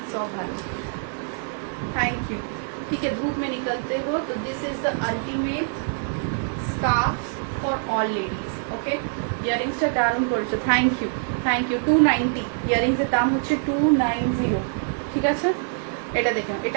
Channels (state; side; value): silent; left; digital silence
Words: ऑफ भालो, थैंक यू। ठीक है, धूप में निकलते हो तो this is the ultimate scarf for all ladies. Okay, ইয়ারিংসটা দারুণ করেছো, থ্যাংক ইউ, থ্যাংক ইউ। 290 ইয়ারিংসের দাম হচ্ছে 290। ঠিক আছে, এটা দেখুন,